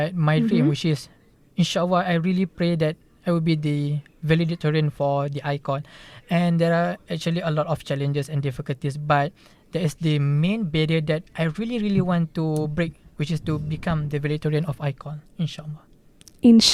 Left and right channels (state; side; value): identical; both; correlation 1.00